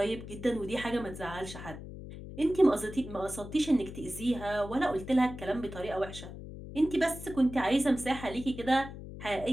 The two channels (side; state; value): left; noise; hum, 12 dB below the sound